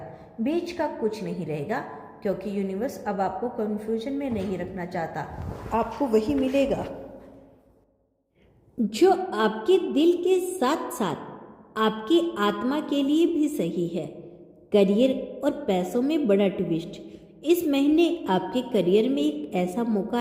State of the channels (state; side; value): identical; both; correlation 1.00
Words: बीच का कुछ नहीं रहेगा, क्योंकि यूनिवर्स अब आपको कंफ्यूजन में नहीं रखना चाहता। आपको वही मिलेगा जो आपके दिल के साथ साथ आपकी आत्मा के लिए भी सही है। करियर और पैसों में बड़ा ट्विस्ट। इस महीने आपके करियर में एक ऐसा मौका